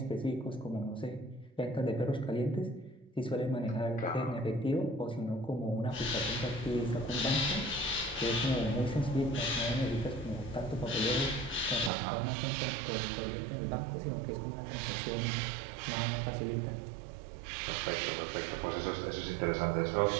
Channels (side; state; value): left; drops out; at 11.9 s